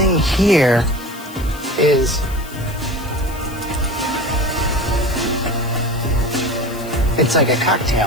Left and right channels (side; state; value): left; noise; hiss, 18 dB below the sound